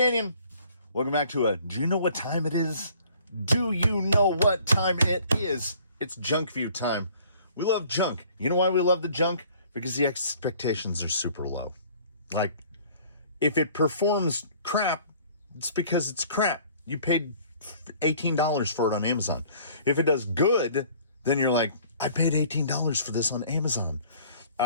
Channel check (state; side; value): inverted; both; correlation -0.54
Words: Welcome back to do you know what time it is? Do you know what time it is? It's Junkview time. We love junk. You know why we love the junk? Because the expectations are super low. Like, if it performs crap, it's because it's crap. You paid $18 for it on Amazon. If it does good, then you're like, I paid $18 for this on Amazon.